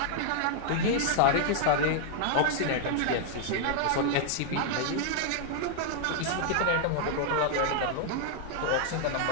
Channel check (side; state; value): both; different; correlation 0.00